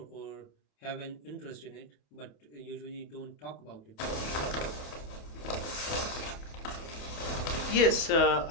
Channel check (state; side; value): late; right; 28 ms